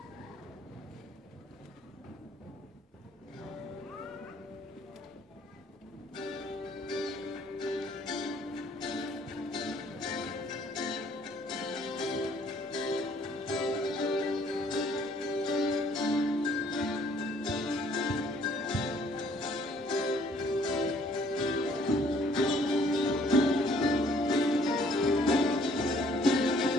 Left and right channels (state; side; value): normal; both; correlation 0.61